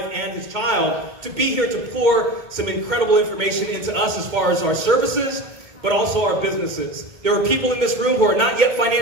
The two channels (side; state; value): left; late; 2.1 ms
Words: and his child to be here to pour some incredible information into us as far as our services, but also our businesses. There are people in this room who are not yet